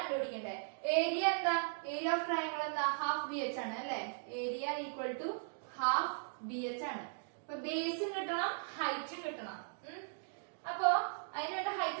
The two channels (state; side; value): silent; left; digital silence